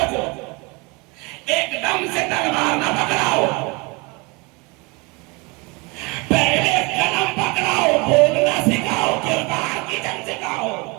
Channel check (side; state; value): left; quieter; 27.2 dB